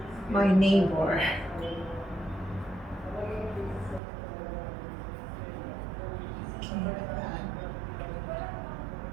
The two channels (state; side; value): drops out; left; at 4.0 s